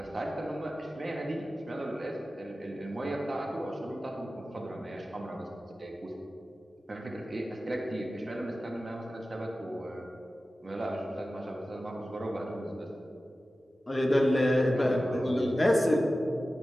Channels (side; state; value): both; normal; correlation 0.95